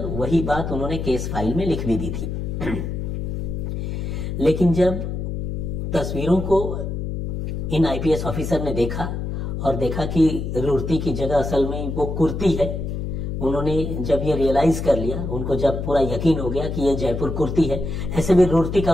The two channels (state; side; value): noise; left; hum, 4 dB below the sound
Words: वही बात उन्होंने केस फाइल में लिख भी दी थी। लेकिन जब तस्वीरों को इन आईपीएस ऑफिसर ने देखा और देखा कि रूर्ती की जगह असल में वो कुर्ती है, उन्होंने जब ये रियलाइज कर लिया, उनको जब पूरा यकीन हो गया कि ये जयपुर कुर्ती है, ऐसे भी रूर्ती